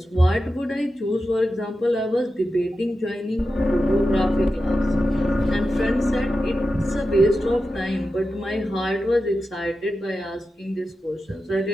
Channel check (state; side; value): normal; both; correlation 0.91